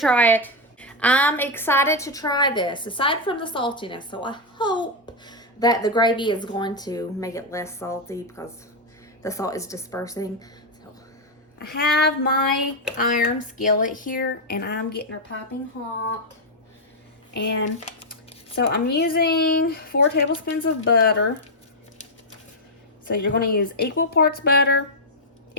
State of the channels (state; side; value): normal; both; correlation 0.00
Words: it. I'm excited to try this, aside from the saltiness. So I hope that the gravy is going to make it less salty because the salt is dispersing. So I have my iron skillet here, and I'm getting her piping hot. And so I'm using 4 tablespoons of butter. So you're going to use equal parts butter,